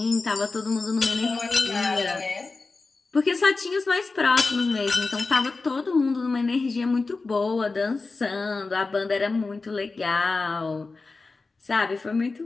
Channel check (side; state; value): right; quieter; 3.8 dB